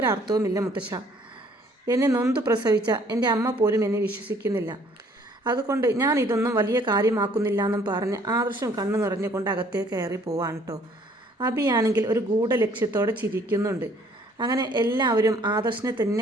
മുത്തശ്ശ. എന്നെ നൊന്തു പ്രസവിച്ച എൻ്റെ അമ്മ പോലും എന്നെ വിശ്വസിക്കുന്നില്ല. അതുകൊണ്ട് ഞാൻ ഇതൊന്നും വലിയ കാര്യമാക്കുന്നില്ല എന്നും പറഞ്ഞ് ആദർശം കണ്ണു നിറഞ്ഞുകൊണ്ട് അകത്തേക്ക് കയറി പോവാണ് കേട്ടോ. അഭിയാണെങ്കിൽ ഒരു ഗൂഢലക്ഷ്യത്തോടെ ചിരിക്കുന്നുണ്ട്. അങ്ങനെ എല്ലാവരും ആദർശിനെ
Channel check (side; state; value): both; normal; correlation 0.60